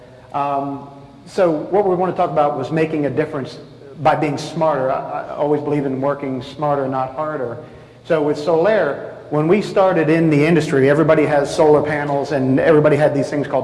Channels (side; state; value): both; identical; correlation 1.00